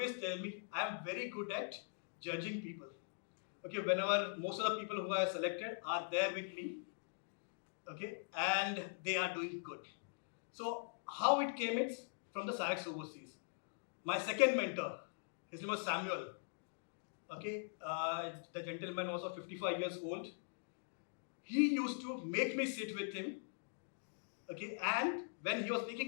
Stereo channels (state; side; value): silent; right; digital silence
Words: tell me I am very good at judging people. Okay, whenever most of the people who I have selected are there with me, okay, and they are doing good. So how it came is from the Sarex overseas. My second mentor, his name was Samuel. Okay, the gentleman was of 55 years old. He used to make me sit with him. Okay, and when he was